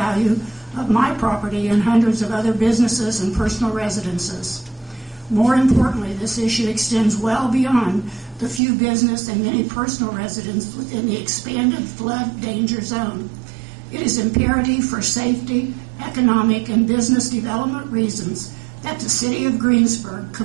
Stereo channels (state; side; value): drops out; left; at 8.6 s